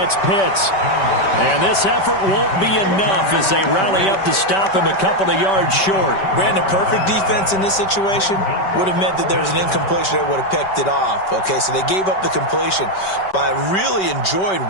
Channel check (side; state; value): right; late; 5.2 ms